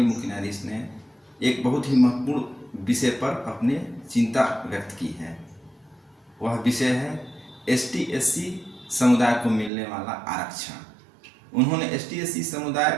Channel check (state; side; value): drops out; left; at 9.7 s